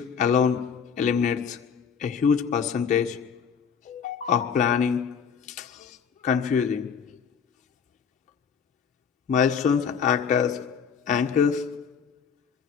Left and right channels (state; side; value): quieter; right; 6.8 dB